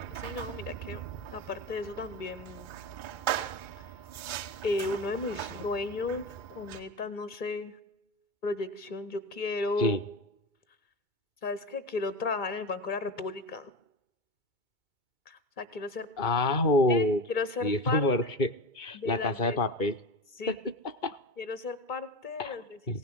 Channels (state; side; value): late; right; 2.2 ms